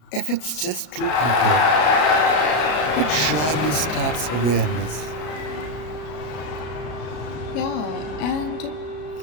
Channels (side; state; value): right; late; 33 ms